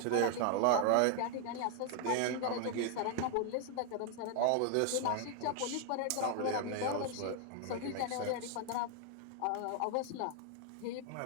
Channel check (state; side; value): different; both; correlation 0.00